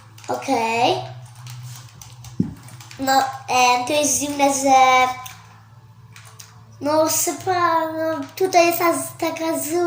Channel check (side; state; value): both; identical; correlation 1.00